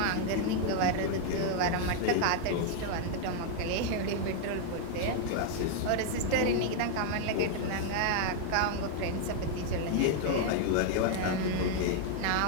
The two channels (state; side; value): different; both; correlation 0.00